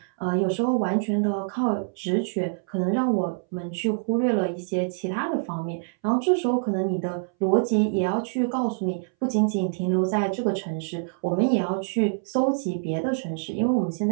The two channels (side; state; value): left; silent; 61 dB below the other